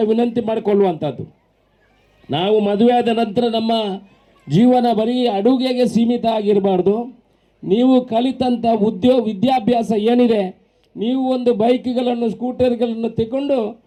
ವಿನಂತಿ ಮಾಡಿಕೊಳ್ಳುವಂಥದ್ದು, ನಾವು ಮದುವೆ ಆದ ನಂತರ ನಮ್ಮ ಜೀವನ ಬರೀ ಅಡುಗೆಗೆ ಸೀಮಿತ ಆಗಿರಬಾರ್ದು. ನೀವು ಕಲಿತಂಥ ವಿದ್ಯಾಭ್ಯಾಸ ಏನಿದೆ, ನೀವು ಒಂದು ಬೈಕ್ಗಳನ್ನು, ಸ್ಕೂಟರ್ಗಳನ್ನು ತಗೊಂಡು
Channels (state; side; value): identical; both; correlation 1.00